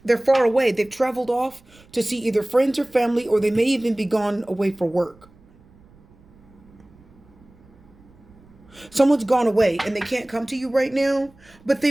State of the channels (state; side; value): noise; right; rumble, 28 dB below the sound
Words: They're far away. They've traveled off to see either friends or family, or they may even be gone away for work. Someone's gone away and they can't come to you right now, but